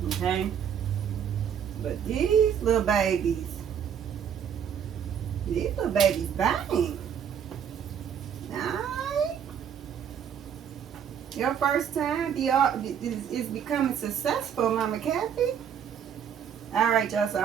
Okay? But these little babies bang. Alright? Your first time is becoming successful, Mama Kathy. Alright, y'all, so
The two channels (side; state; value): left; quieter; 8.2 dB